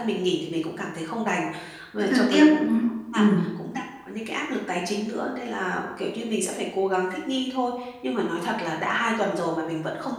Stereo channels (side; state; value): both; identical; correlation 1.00